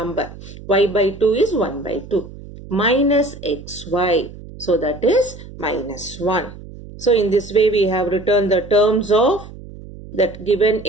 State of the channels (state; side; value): noise; right; hum, 16 dB below the sound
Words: Y by 2 is 1 by 2. Minus xy. So that is minus 1. So in this way, we have written the terms of that given